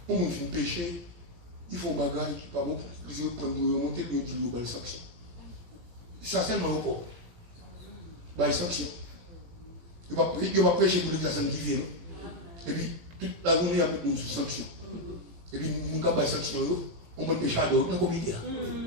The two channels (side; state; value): left; late; 17 ms